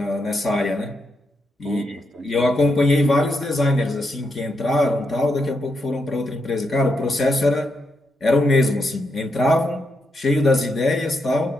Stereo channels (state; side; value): normal; both; correlation 0.82